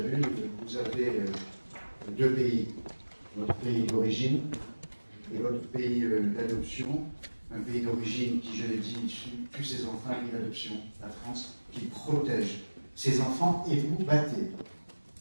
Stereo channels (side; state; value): both; inverted; correlation -1.00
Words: Vous avez 2 pays, votre pays d'origine et votre pays d'adoption. Un pays d'origine qui, je l'ai dit, tue ses enfants, un pays d'adoption, la France, qui protège ses enfants, et vous battez